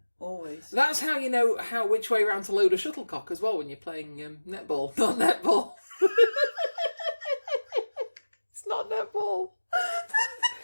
always. That's how you know which way round to load a shuttlecock as well when you're playing netball. Not netball. It's not netball.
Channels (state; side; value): inverted; both; correlation -1.00